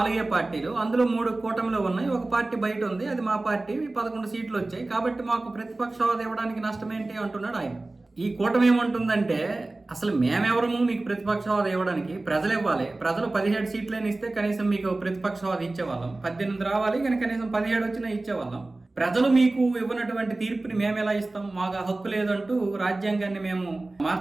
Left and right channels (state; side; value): quieter; left; 3.0 dB